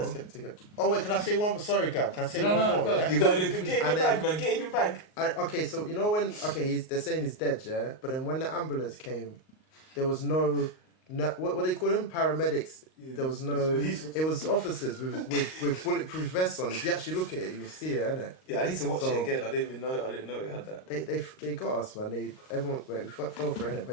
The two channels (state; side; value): late; right; 38 ms